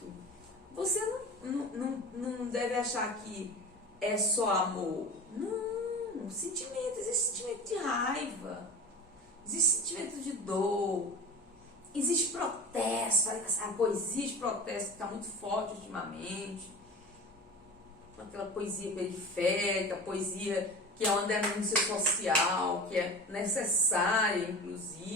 você não deve achar que é só amor. Não, sentimento, existe sentimento de raiva, existe sentimento de dor, existe protesto, a poesia de protesto está muito forte ultimamente, aquela poesia periférica, poesia que é uma denúncia social, que é necessária,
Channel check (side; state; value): both; normal; correlation 0.33